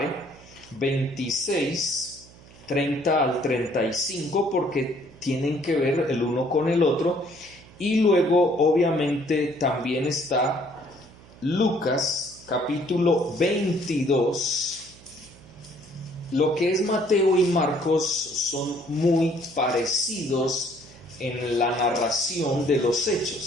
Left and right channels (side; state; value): right; noise; hum, 23 dB below the sound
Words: 26, 30 al 35, porque tienen que ver el uno con el otro. Y luego, obviamente, también está Lucas, capítulo 22. Lo que es Mateo y Marcos son muy parecidos en la narración de los